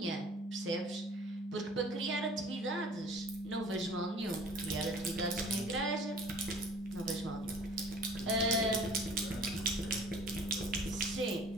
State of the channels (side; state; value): both; normal; correlation 0.48